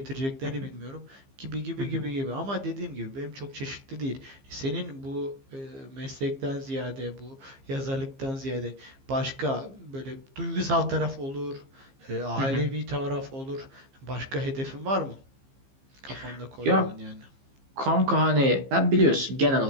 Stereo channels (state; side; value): late; left; 15 ms